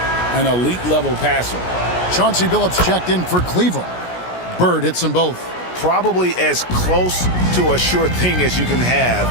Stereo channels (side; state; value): right; late; 17 ms